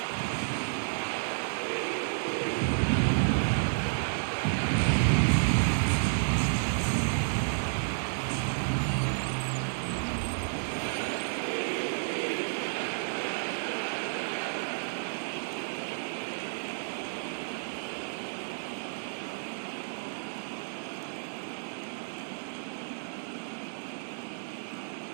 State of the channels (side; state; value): left; silent; 57 dB below the other